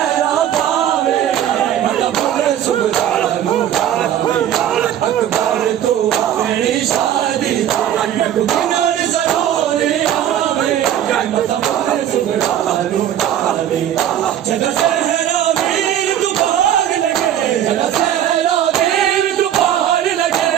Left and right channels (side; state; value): left; quieter; 10.8 dB